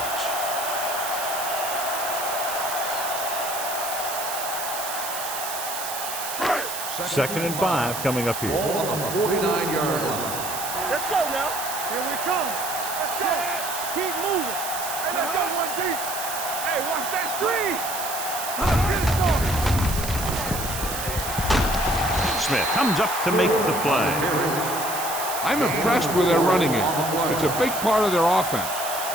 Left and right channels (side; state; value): right; noise; hiss, 6 dB below the sound